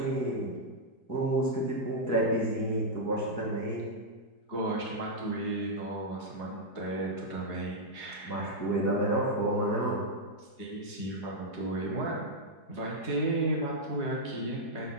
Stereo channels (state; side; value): late; right; 4.7 ms